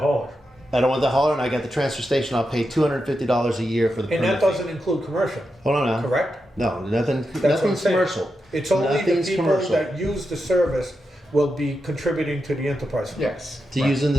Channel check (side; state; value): both; normal; correlation 0.87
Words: I don't want the hauler, and I got the transfer station. I'll pay $250 a year for the And permit that fee. doesn't include commercial, Hold on now. correct? No, nothing. That's what I'm Nothing's saying. commercial. It's only the Nothing's people commercial. that use the service will be contributing to the enterprise fund. Yes. To right. using